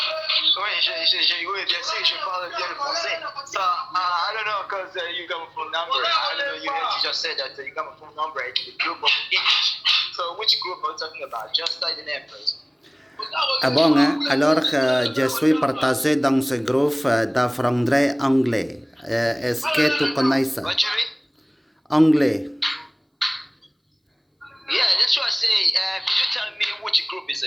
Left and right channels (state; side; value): identical; both; correlation 1.00